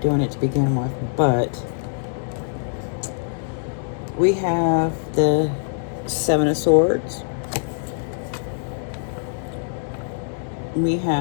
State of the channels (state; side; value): silent; right; 63 dB below the other